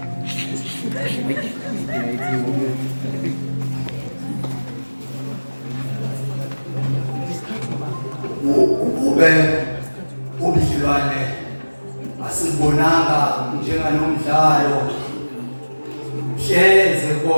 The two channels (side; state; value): both; inverted; correlation -1.00